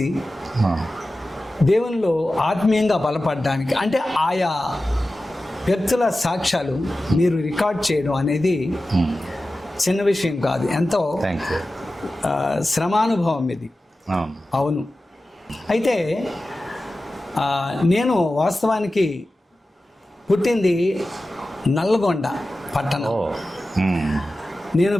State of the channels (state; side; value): normal; both; correlation 0.94